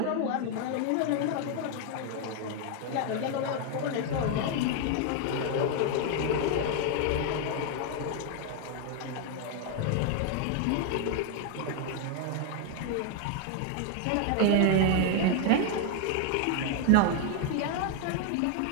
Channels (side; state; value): both; different; correlation 0.00